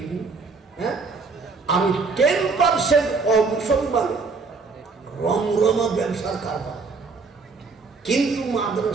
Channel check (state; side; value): quieter; left; 4.4 dB